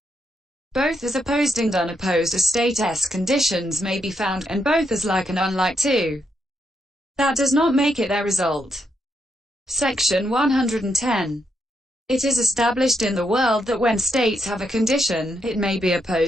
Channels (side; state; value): both; normal; correlation 0.79